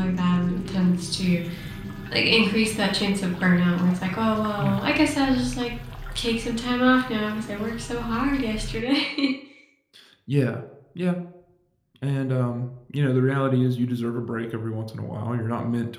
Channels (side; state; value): both; identical; correlation 1.00